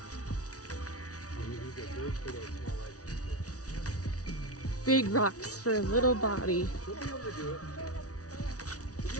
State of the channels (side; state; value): right; late; 0.67 ms